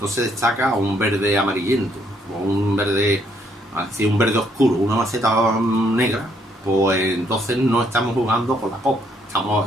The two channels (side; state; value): both; normal; correlation 0.70